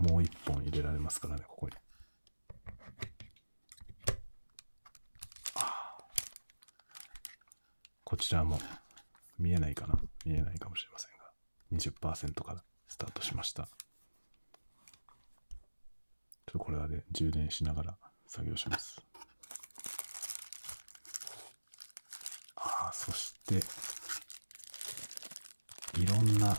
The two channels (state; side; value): inverted; both; correlation -1.00